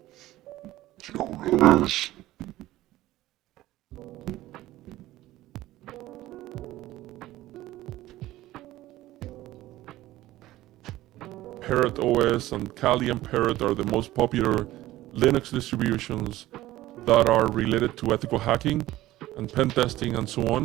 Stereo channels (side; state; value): left; quieter; 16.0 dB